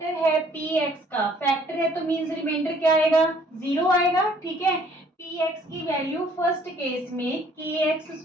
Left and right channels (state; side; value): normal; both; correlation 0.59